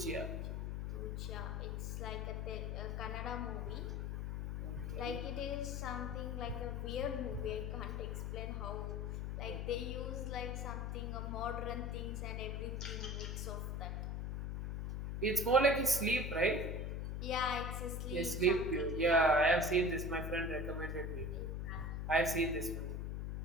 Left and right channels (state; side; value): noise; left; hum, 2 dB below the sound